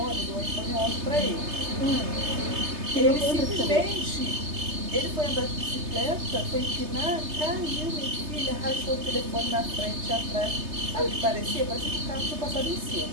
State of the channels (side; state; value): left; late; 3.3 ms